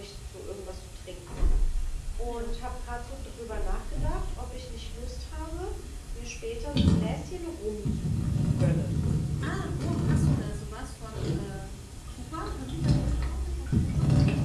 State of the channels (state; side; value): identical; both; correlation 1.00